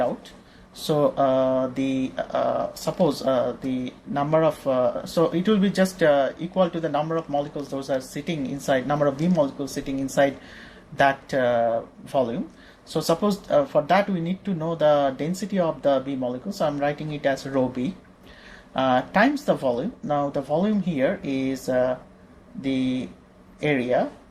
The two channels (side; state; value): both; identical; correlation 1.00